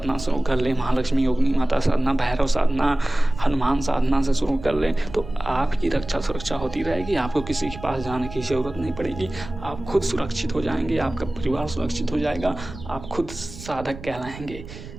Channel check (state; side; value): noise; right; rumble, 14 dB below the sound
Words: शुरू कर लें, महालक्ष्मी योगिनी माता साधना, भैरव साधना, हनुमान साधना से शुरू कर लें, तो आपकी रक्षा सुरक्षा होती रहेगी। आपको किसी के पास जाने की ज़रूरत नहीं पड़ेगी। आप खुद सुरक्षित हो जाएँगे, आपका परिवार सुरक्षित हो जाएगा, आप खुद साधक कहलाएँगे।